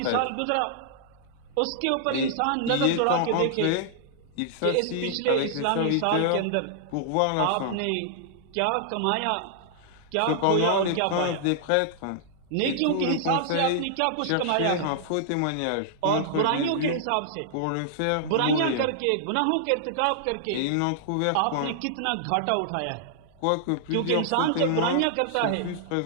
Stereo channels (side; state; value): both; different; correlation -0.01